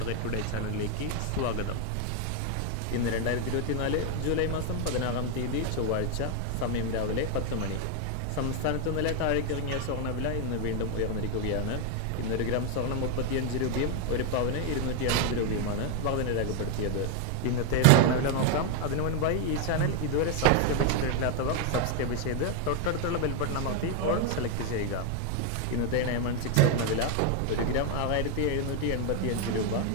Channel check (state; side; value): different; both; correlation 0.01